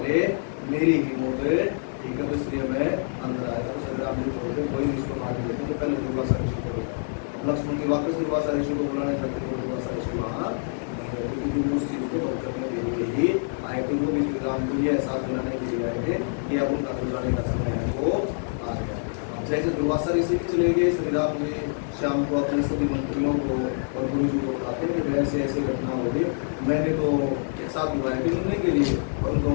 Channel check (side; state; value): right; silent; 61 dB below the other